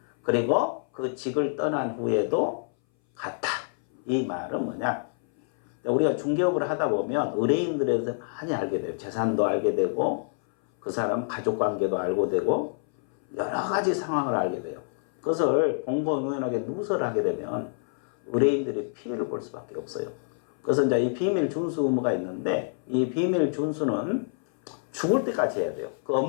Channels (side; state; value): right; silent; 59 dB below the other